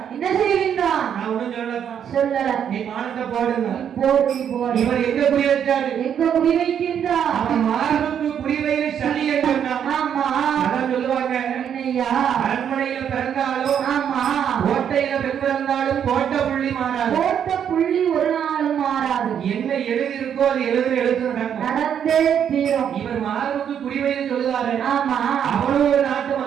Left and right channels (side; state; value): left; quieter; 8.7 dB